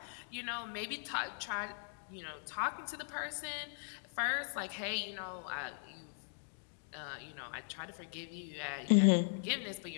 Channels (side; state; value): right; silent; digital silence